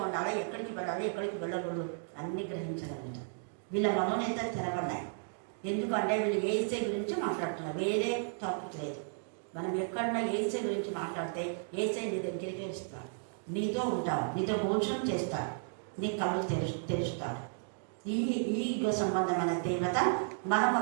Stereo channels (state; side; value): silent; left; digital silence